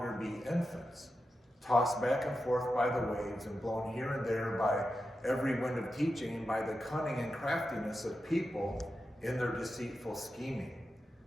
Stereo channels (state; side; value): normal; both; correlation 0.90